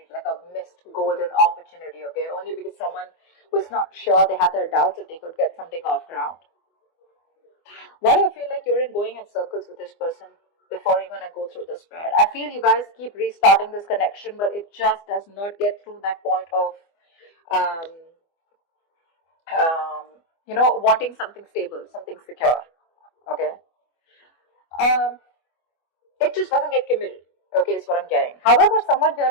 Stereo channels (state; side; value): late; right; 24 ms